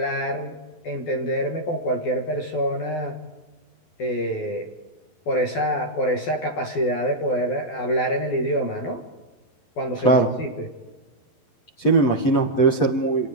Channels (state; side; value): late; right; 11 ms